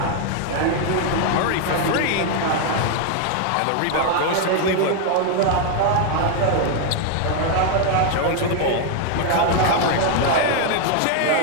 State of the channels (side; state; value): both; different; correlation 0.01